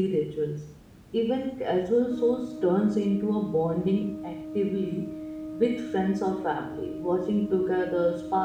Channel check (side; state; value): both; identical; correlation 1.00